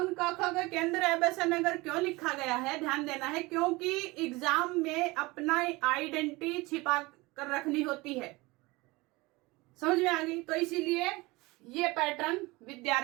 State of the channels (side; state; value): left; quieter; 22.7 dB